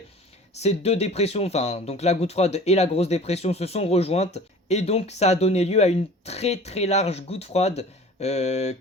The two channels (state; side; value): normal; both; correlation 0.43